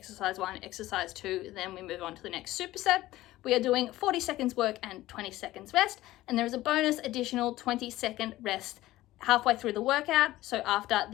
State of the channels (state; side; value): quieter; right; 16.4 dB